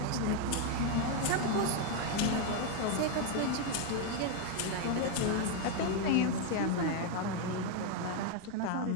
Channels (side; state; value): both; different; correlation 0.01